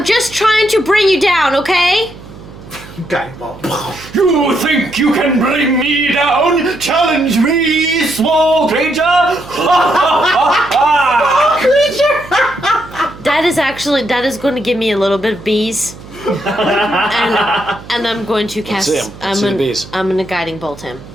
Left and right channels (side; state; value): right; noise; hum, 18 dB below the sound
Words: just trying to bring you down, okay? Guiding bolt. You think you can bring me down? Challenge me, small creature! That is going to give me a little bit of bees. and I'm going to cast. Let's see the bees. I'm gonna guiding bolt him.